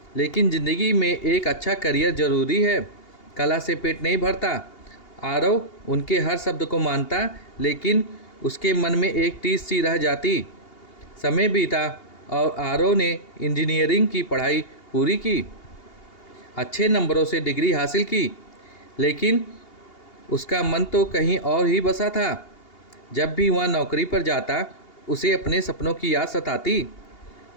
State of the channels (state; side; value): late; right; 2.8 ms